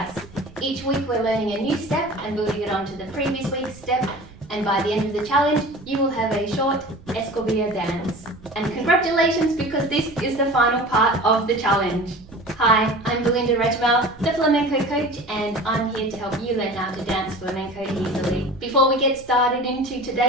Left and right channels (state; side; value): noise; right; rumble, 23 dB below the sound